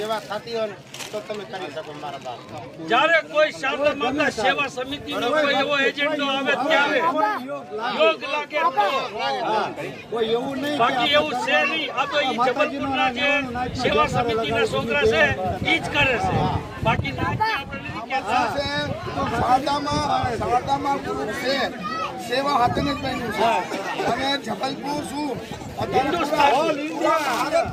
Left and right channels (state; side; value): identical; both; correlation 1.00